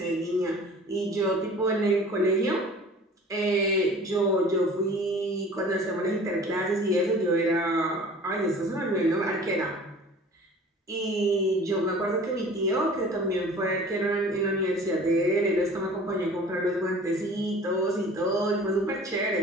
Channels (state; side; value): normal; both; correlation 0.45